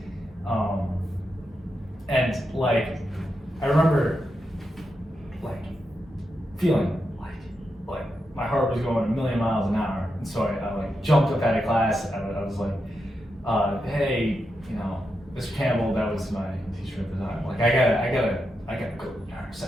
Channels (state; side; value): normal; both; correlation 0.86